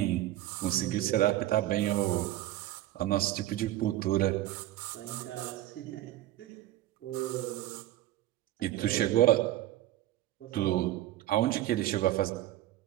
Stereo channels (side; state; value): left; quieter; 14.4 dB